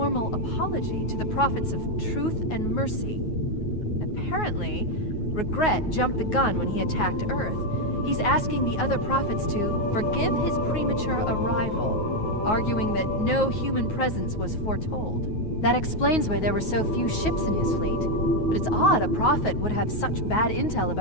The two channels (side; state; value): right; late; 9.4 ms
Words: apology to the prophets of truth and mercy. Apparently, Regret jumped the gun when he attacked Earth. He's asking the other prophets to forgive his premature arrival, arguing that no human presence was foretold. That explains why there were so few ships in his fleet. But it's odd a prophet would have such bad intel